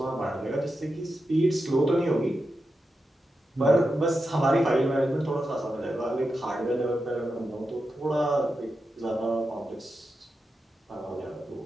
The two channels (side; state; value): both; normal; correlation 0.89